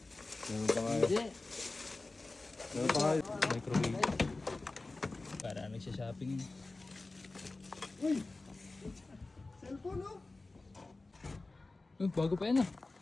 Meron pa nga. Meron pa nga. Microwave. Para nagsha-shopping yun. Uy! Cellphone, oh! Bago pa yan ah.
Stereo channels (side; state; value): right; quieter; 3.3 dB